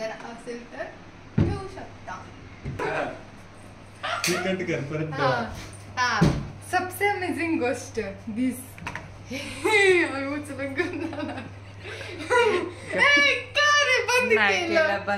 असेल तर ठेवू शकता. सबसे अमेझिंग गोष्ट दिस उचलून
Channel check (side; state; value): both; identical; correlation 1.00